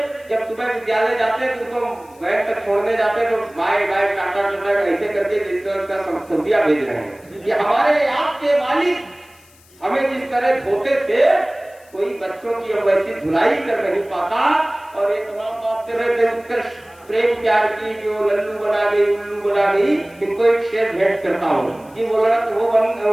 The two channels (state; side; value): noise; left; hiss, 28 dB below the sound